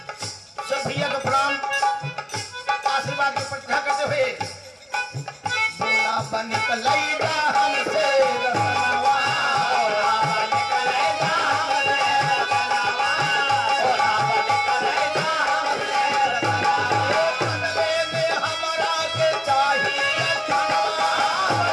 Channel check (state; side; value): identical; both; correlation 1.00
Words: सब भैया को प्रणाम आशीर्वाद की प्रतिष्ठा करते हुए बोला बन निकलई जा हमसे रसनवा